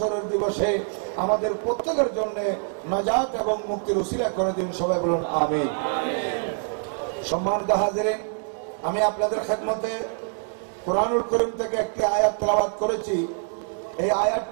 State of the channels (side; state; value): left; silent; 62 dB below the other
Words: দিবসে আমাদের প্রত্যেকের জন্য নাজাত এবং মুক্তির উসিলা করে দিন। সবাই বলুন আমিন। সম্মানিত হাজিরিন, আমি আপনাদের খেদমতে কোরআনুল করিম থেকে একটি আয়াত তেলাওয়াত করেছি। এই